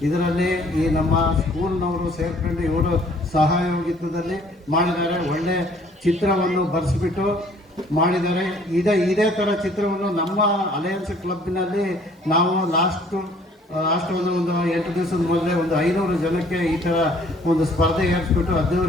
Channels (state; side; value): normal; both; correlation 0.58